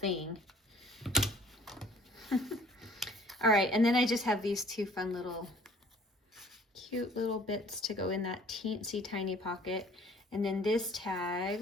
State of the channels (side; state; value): both; normal; correlation 0.55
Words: All right, and then I just have these two fun little cute little bits to go in that teensy tiny pocket, and then this tag